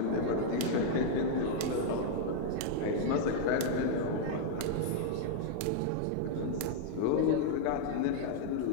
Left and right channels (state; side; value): different; both; correlation -0.01